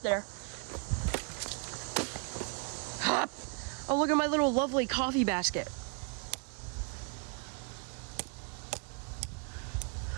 Oh, look at my little lovely coffee basket.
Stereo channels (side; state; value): left; quieter; 34.6 dB